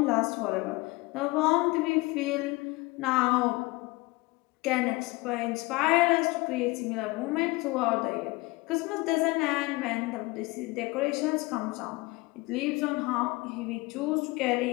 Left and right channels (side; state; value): right; quieter; 23.3 dB